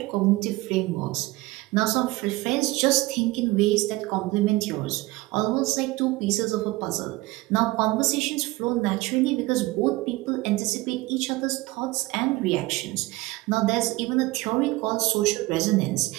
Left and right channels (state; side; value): quieter; left; 20.3 dB